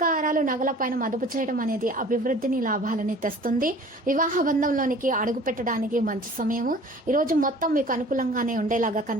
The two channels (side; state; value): both; normal; correlation 0.47